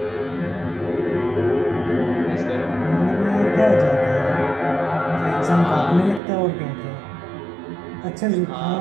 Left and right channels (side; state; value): left; drops out; at 6.2 s